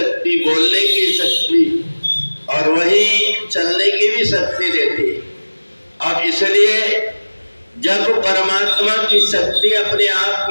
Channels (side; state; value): both; inverted; correlation -1.00